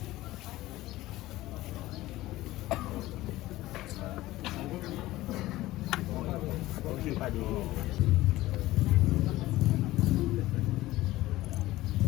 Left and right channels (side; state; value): right; quieter; 17.0 dB